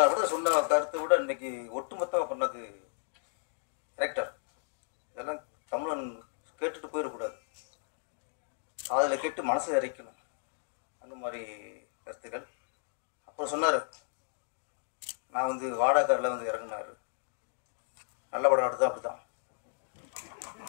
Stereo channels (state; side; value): silent; right; digital silence